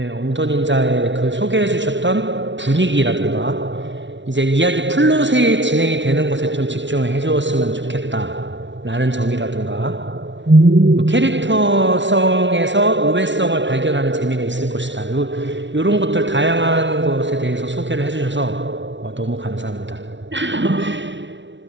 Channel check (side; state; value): left; late; 0.54 ms